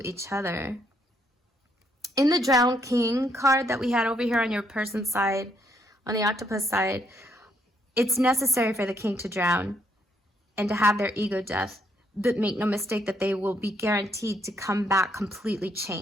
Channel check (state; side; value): normal; both; correlation 0.72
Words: each other. In the Drowned King card that we had over here on your person's side, on the octopus side, it's necessary for the king to drown and to have their ego death. But make no mistake that they will be guaranteed to come back completely